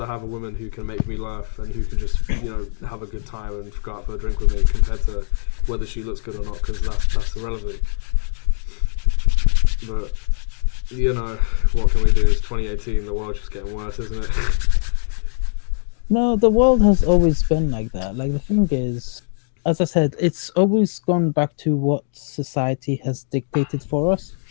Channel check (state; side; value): silent; right; digital silence